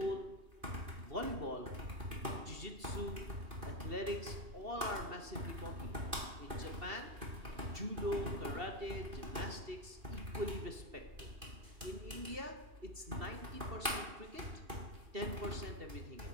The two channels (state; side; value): late; left; 2.5 ms